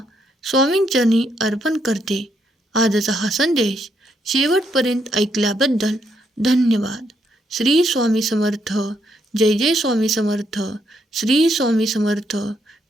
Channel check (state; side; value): normal; both; correlation 0.76